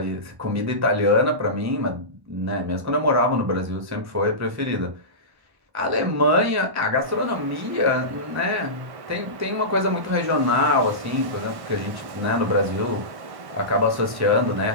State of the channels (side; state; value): left; late; 1.1 ms